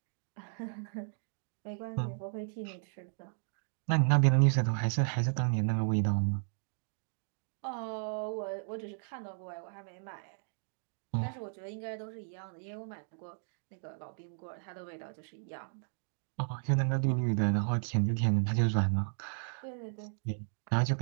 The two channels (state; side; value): silent; left; digital silence